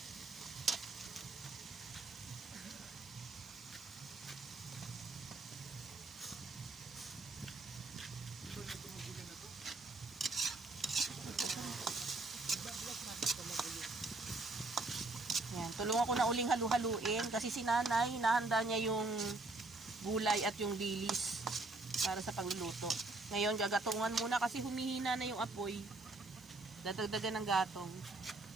Yan, tulungan ko na uling halu-haluin kasi si nanay, hinahanda niya yung gulay at yung dilis para sa pagluluto. Ngayon, gagatungan muna kasi humihina na yung apoy. Dadagdagan ng gatong.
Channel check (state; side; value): quieter; left; 3.2 dB